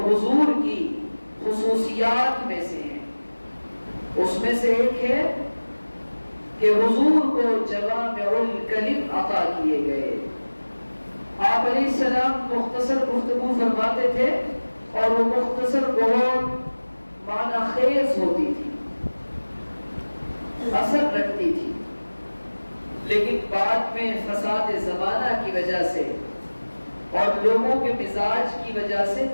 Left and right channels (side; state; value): both; inverted; correlation -1.00